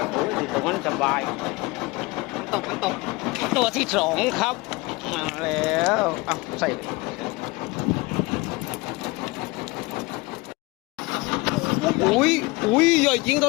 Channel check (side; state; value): right; quieter; 23.7 dB